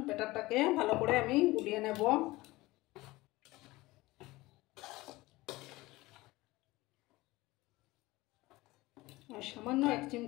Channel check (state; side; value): quieter; right; 19.9 dB